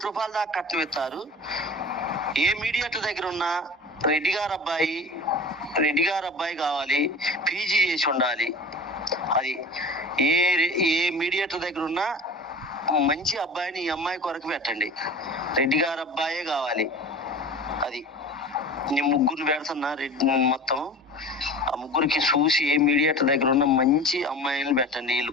కోటి దాకా కట్నం ఇస్తారు. ఏ మీడియేటర్ దగ్గర ఉన్నా రెడ్డి గారు అబ్బాయి కావాలి, పీజీ చేసి ఉండాలి. అది ఏ మీడియేటర్ దగ్గర ఉన్నా మంచి అబ్బాయిని ఈ అమ్మాయి కొరకు పెట్టండి. రెడ్డి గారు అబ్బాయే కావాలి. అది నేను ముగ్గురిని పెడుతున్నా. మొత్తం ఆ ముగ్గురికి చూసి ఏ మీడియేటర్ దగ్గర ఉన్న మంచి అమ్మాయిని పెట్టండి. వీళ్ళు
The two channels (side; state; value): both; normal; correlation 0.36